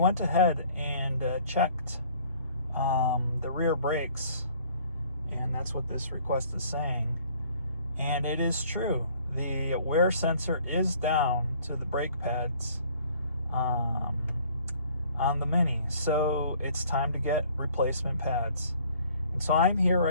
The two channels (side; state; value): both; inverted; correlation -0.56